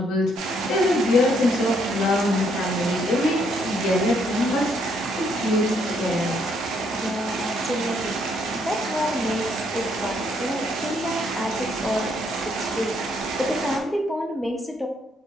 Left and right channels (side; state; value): both; normal; correlation 0.71